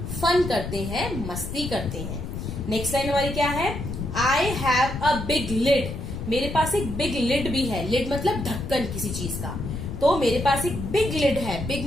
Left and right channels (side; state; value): left; noise; rumble, 7 dB below the sound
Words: फन करते हैं, मस्ती करते हैं। नेक्स्ट लाइन हमारी क्या है, I have a big lid. मेरे पास एक बिग लिड भी है, लिड मतलब ढक्कन किसी चीज का, तो मेरे पास एक बिग लिड है, बिग